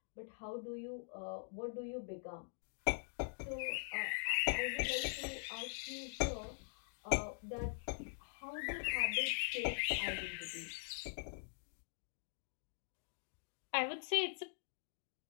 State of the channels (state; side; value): silent; right; digital silence